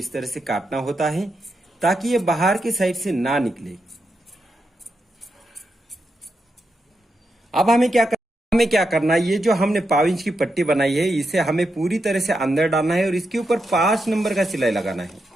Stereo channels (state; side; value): normal; both; correlation 0.85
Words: तरह से काटना होता है ताकि ये बाहर की साइड से ना निकले। अब हमें क्या करना है, ये जो हमने 1/2 इंच की पट्टी बनाई है इसे हमें पूरी तरह से अंदर डालना है और इसके ऊपर 5 नंबर का सिलाई लगाना है।